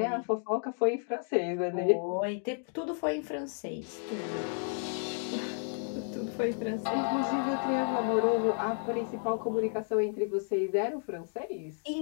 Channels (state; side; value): silent; right; 56 dB below the other